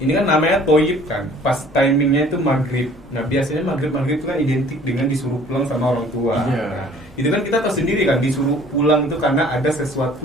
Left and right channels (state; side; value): normal; both; correlation 0.53